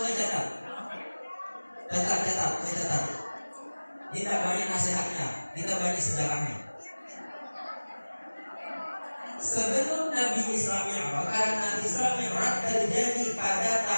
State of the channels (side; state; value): both; inverted; correlation -1.00